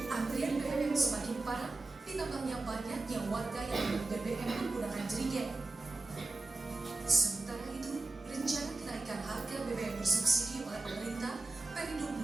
Antrian BBM semakin parah ditambahnya banyaknya warga yang membeli BBM menggunakan jerigen. Sementara itu, rencana kenaikan harga BBM bersubsidi oleh pemerintah Perindo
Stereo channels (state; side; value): quieter; left; 3.3 dB